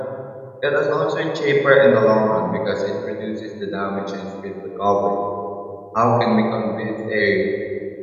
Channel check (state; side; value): identical; both; correlation 1.00